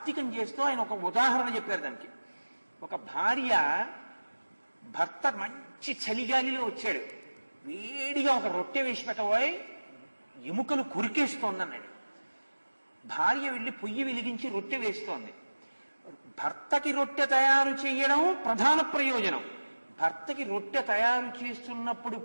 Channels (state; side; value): inverted; both; correlation -1.00